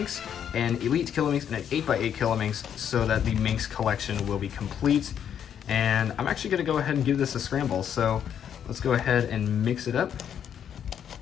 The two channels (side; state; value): right; quieter; 8.9 dB